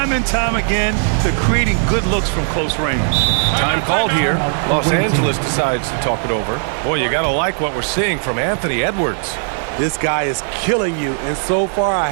and time again, they're creating good looks from close range. Time called here. Los Angeles decides to talk it over. Boy, you got to like what we're seeing from Anthony Edwards. This guy is killing you, and so far I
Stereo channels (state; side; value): silent; left; 64 dB below the other